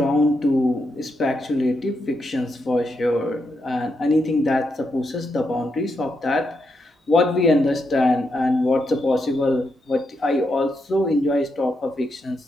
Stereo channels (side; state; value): both; normal; correlation 0.82